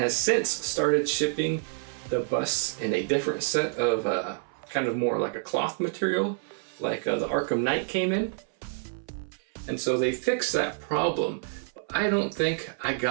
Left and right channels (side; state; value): left; silent; 58 dB below the other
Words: since started shipping the busts in a different set of kind of more like a cloth material, like the Arkham Knight came in. And so they fixed that problem. I don't think I